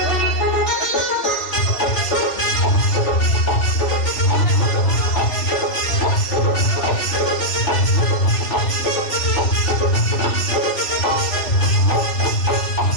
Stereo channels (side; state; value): right; late; 3.4 ms